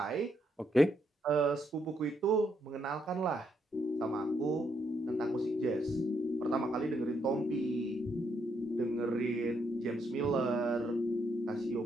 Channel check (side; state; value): both; normal; correlation 0.76